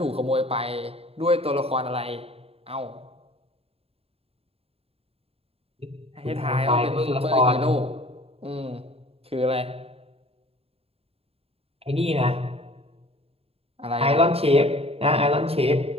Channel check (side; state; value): left; late; 0.28 ms